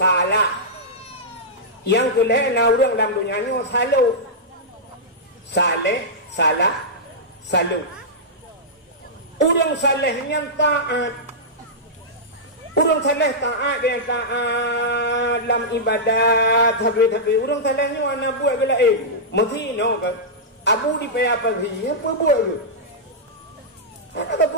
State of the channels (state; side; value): normal; both; correlation -0.11